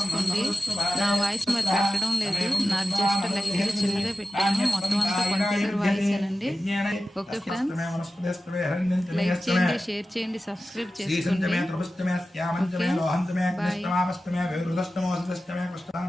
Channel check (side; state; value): both; normal; correlation 0.93